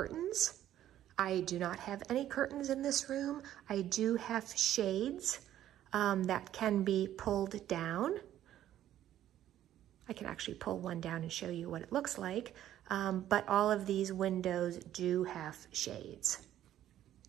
I do not have any curtains in this room. I do have shades that can be pulled down. I can actually pull one down and show you what it looks like, but all of these windows do have shades.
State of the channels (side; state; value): left; quieter; 12.1 dB